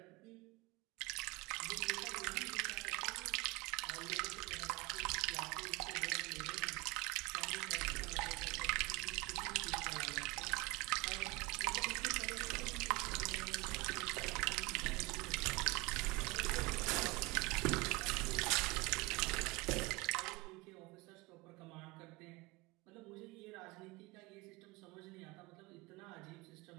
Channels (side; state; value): left; quieter; 24.6 dB